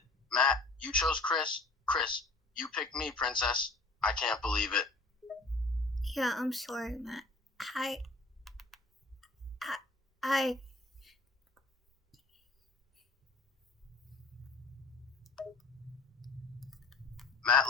Matt, you chose Chris? Chris, you picked me, Princess. I can't believe it. Yeah, I'm sorry, Matt. I Matt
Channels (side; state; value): right; quieter; 3.4 dB